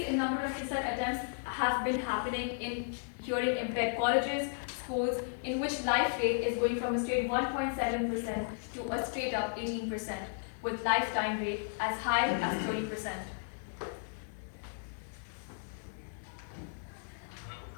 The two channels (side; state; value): right; silent; 55 dB below the other